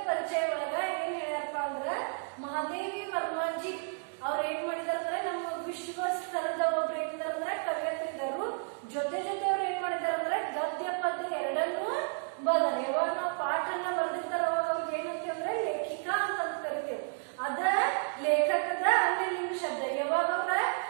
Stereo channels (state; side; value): silent; left; 57 dB below the other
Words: ಪರಿಚಯ ಒಳಗ ಏನ್ ಹೇಳ್ಯಾರಪ್ಪ ಅಂದ್ರ ಮಹಾದೇವಿ ವರ್ಮಾಜಿ ಅವ್ರ ಏನ್ ಮಾಡಿದಾರಂದ್ರೆ ನಮ್ಮ ವಿಶ್ವ ಸ್ತರದ ಒಬ್ರು ಏನಿದಾರಂದ್ರೆ ಕವಿಯತ್ರಿದರು. ಜೊತೆ ಅವ್ರು ಏನ್ ಮಾಡಿದಾರಂದ್ರೆ ಗದ್ಯ ಪದ್ಯ ಎರಡನ್ನೂ ಬದಲ. ಯಾವಾಗ ನಾವು ಪಾಠನ ಬರ್ದಿರ್ತಾರ ಅವಾಗ ಅವ್ರಿಗೆ ಏನಂತೀವಿ ಅಂದ್ರೆ ಲೇಖಿಕಾ ಅಂತ ಕರಿತೇವೆ. ಅದ ಲೇಖಕದ ಅನ್ಯಲಿಂಗ ಶಬ್ದ. ಯಾವಾಗ ಅವ್ರ